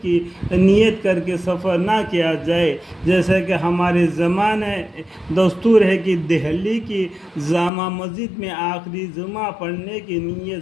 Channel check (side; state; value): right; drops out; at 7.7 s